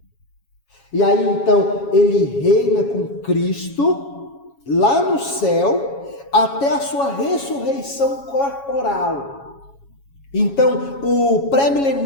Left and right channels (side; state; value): right; late; 7.2 ms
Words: E aí então ele reina com Cristo lá no céu até a sua ressurreição corporal. Então o